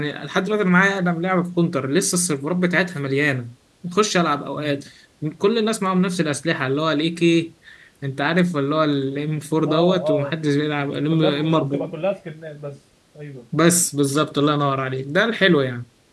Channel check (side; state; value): both; identical; correlation 1.00